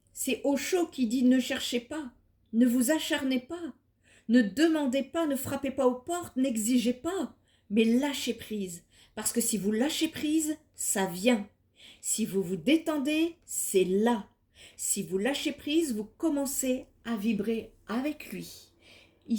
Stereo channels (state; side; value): identical; both; correlation 1.00